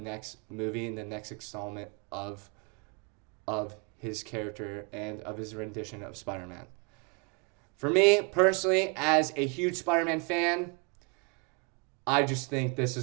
movie and the next installment of his character and of his rendition of Spider-Man. For me, personally, as a huge Spider-Man fan, I just think this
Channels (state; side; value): quieter; left; 33.5 dB